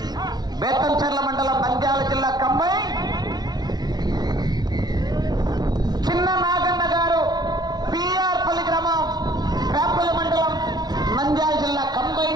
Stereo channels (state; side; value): late; left; 0.19 ms